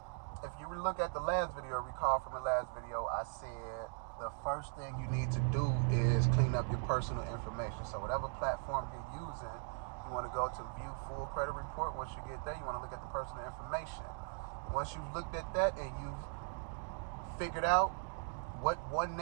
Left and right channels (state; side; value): silent; left; 52 dB below the other